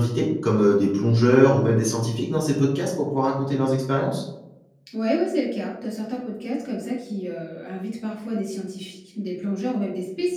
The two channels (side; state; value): both; identical; correlation 1.00